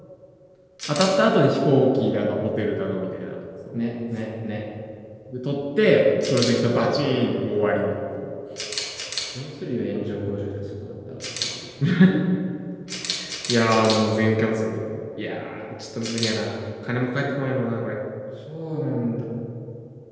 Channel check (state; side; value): identical; both; correlation 1.00